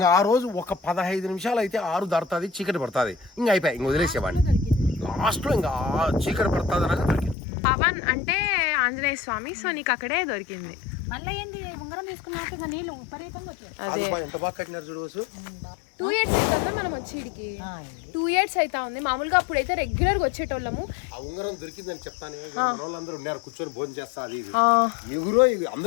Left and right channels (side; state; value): right; drops out; at 7.4 s